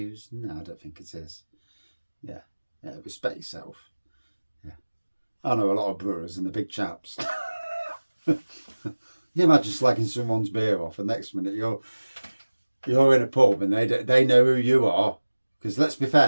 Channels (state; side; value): inverted; both; correlation -1.00